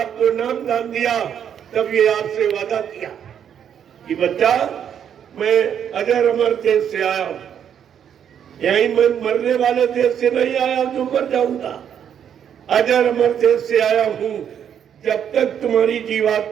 नाम दान दिया तब ये आपसे वादा किया कि बच्चा, मैं अजर अमर देश से आया हूं, यही मैं मरने वाले देश से नहीं आया जो मर जाऊंगा। अजर अमर देश से आया हूं। जब तक तुम्हारी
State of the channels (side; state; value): left; quieter; 8.7 dB